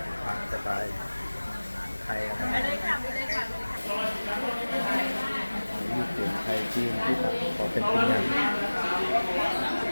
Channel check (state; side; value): inverted; both; correlation -1.00